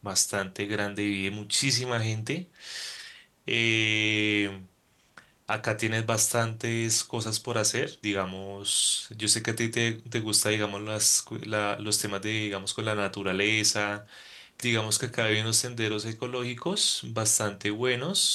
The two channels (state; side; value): identical; both; correlation 1.00